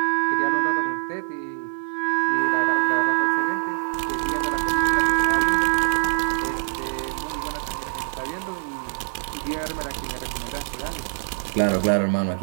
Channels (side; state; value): left; silent; 62 dB below the other